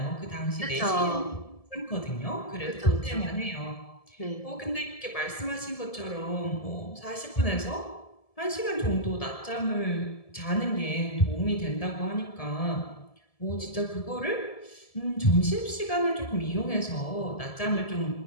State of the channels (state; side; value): late; right; 1.7 ms